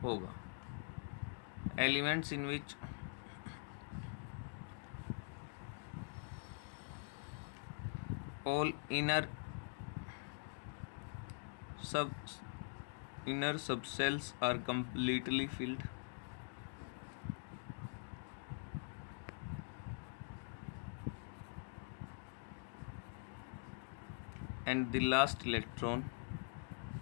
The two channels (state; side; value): silent; right; digital silence